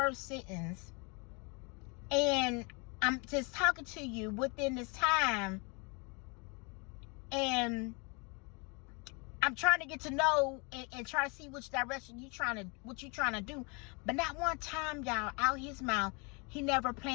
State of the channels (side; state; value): right; quieter; 31.6 dB